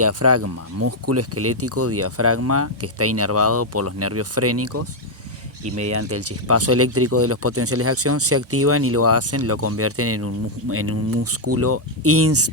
músculo esquelético diafragma que está inervado por los nervios frénicos y mediante el chispazo eléctrico de los potenciales de acción se activan y lo convierten en un músculo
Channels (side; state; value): both; normal; correlation -0.01